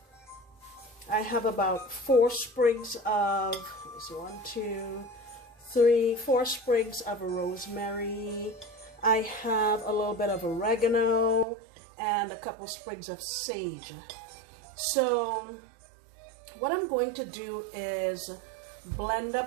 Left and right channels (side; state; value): left; drops out; at 11.5 s